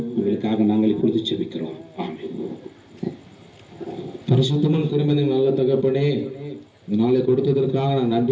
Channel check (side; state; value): both; identical; correlation 1.00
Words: உங்களுக்காக நாங்கள் இப்பொழுது செபிக்கிறோம். ஆமென். பரிசுத்தமும் திருமணம் நல்ல தகப்பனே, இந்த நாளை கொடுத்ததற்காக நான்